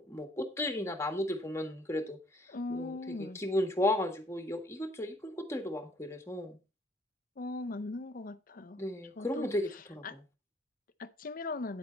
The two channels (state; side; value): normal; both; correlation 0.63